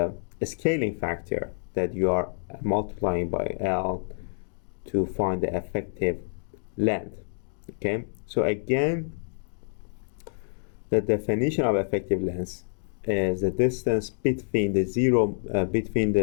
scaling factor that you are multiplying by L to find the effective length. Okay, so again, the definition of effective length is the distance between the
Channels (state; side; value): silent; right; digital silence